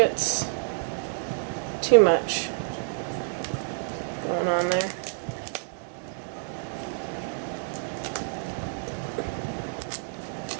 too much going on there.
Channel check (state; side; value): silent; left; digital silence